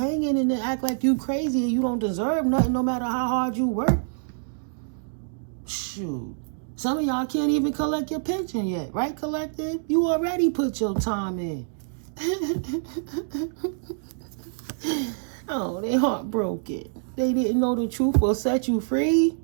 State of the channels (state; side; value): silent; left; digital silence